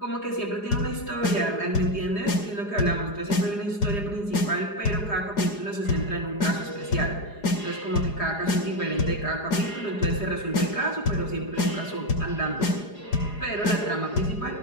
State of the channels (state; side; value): late; right; 4.9 ms